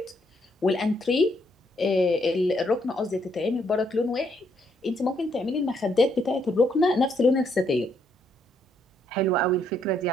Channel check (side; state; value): both; normal; correlation 0.73